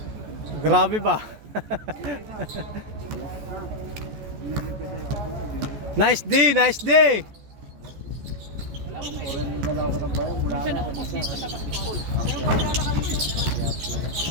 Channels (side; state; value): left; late; 14 ms